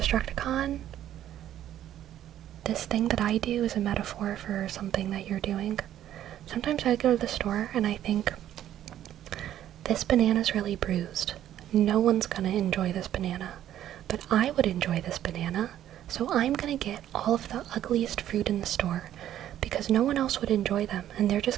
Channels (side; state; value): left; quieter; 11.7 dB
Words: this thing that I do is a metaphor for something that you're doing. Sometimes I go to the store and I think, this banana's really bruised. No one's gonna enjoy this banana, but I would enjoy this banana, so I'm gonna get all of the ugliest fruit in the store, because no one else would enjoy them, and they're